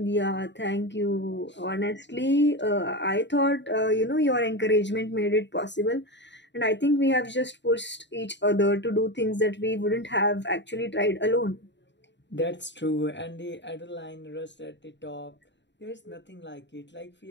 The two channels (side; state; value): right; late; 0.52 ms